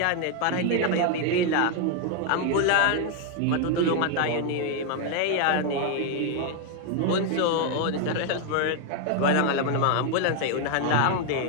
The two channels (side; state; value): both; different; correlation 0.01